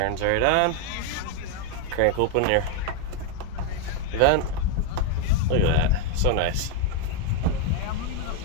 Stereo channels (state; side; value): different; both; correlation 0.01